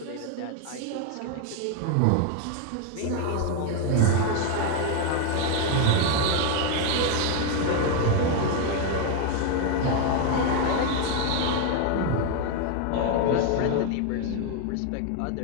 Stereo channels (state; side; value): different; both; correlation 0.01